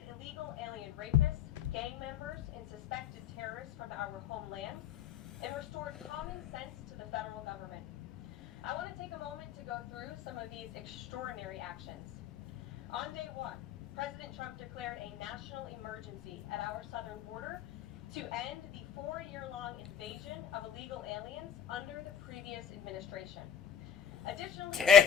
illegal alien rapists, gang members, and suspected terrorists from our homeland, and restored common sense to the federal government. I want to take a moment to go through some of these extraordinary actions. On day 1, President Trump declared a national emergency at our southern border to end the 4-year-long invasion of illegal aliens under the previous administration. Additionally,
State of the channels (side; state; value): right; quieter; 8.2 dB